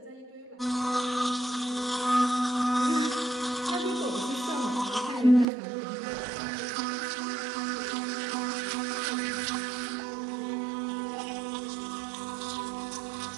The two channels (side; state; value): left; drops out; at 5.5 s